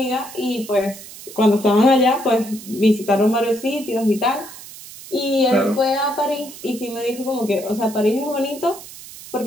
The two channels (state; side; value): noise; right; hiss, 16 dB below the sound